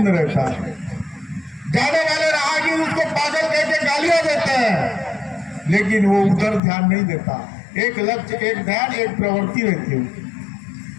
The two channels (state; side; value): drops out; right; at 6.6 s